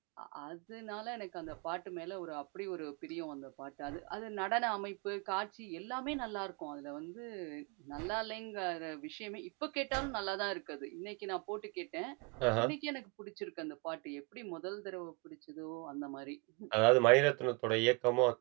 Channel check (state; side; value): quieter; left; 30.5 dB